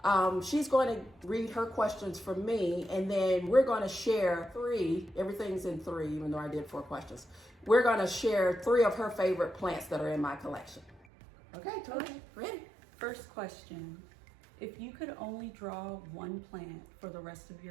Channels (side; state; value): left; drops out; at 11.0 s